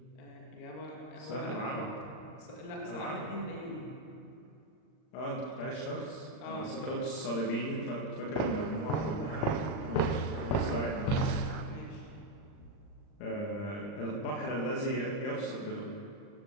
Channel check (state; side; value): late; right; 39 ms